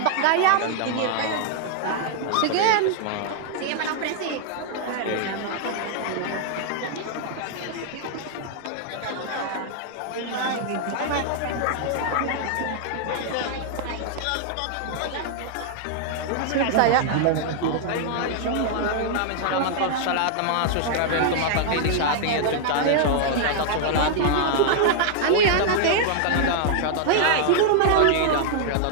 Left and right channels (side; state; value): both; different; correlation -0.01